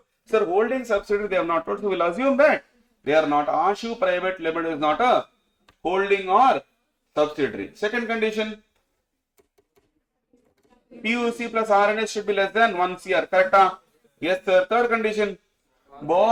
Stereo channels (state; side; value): identical; both; correlation 1.00